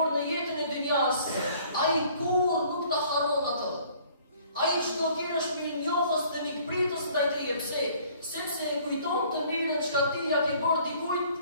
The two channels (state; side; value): inverted; both; correlation -0.56